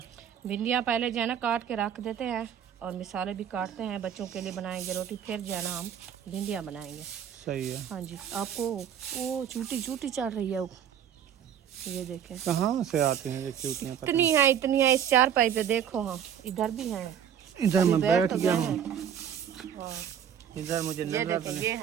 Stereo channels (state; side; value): quieter; left; 8.9 dB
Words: भिंडियाँ पहले जो है ना काट के रख देते हैं और मिसाले भी काटते हैं, बच्चों के लिए बनाएंगे रोटी, फिर जो है ना हम भिंडियाँ बनाएंगे। सही है। हाँ जी, आपको वो चूटी चूटी चढ़ रही है वो, ये देखें कहाँ से आते हैं ये चूटियाँ? इतनी है इस चारपाई पे, देखो। हाँ इधर भी है, इधर मैं बैठ तो गया गए हूँ, हैं। हाँ, इधर मुझे ये नजर देखें, ये